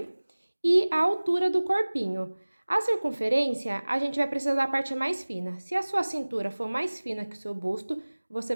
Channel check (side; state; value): both; inverted; correlation -1.00